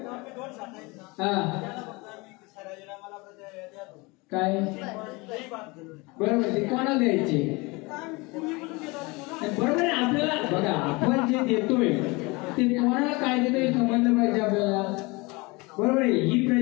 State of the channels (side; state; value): right; quieter; 25.4 dB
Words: हा काय बरोबर ते कोणाला द्यायचे? बरोबर आहे. आपल्याला बघा, आपण जे देतोय ते कोणाला काय देतोय समजलं पाहिजे आपल्याला, बरोबर आहे. ही